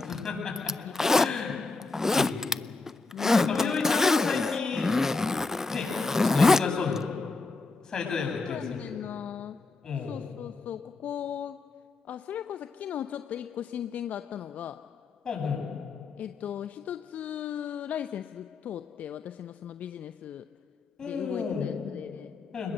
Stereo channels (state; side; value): quieter; right; 3.9 dB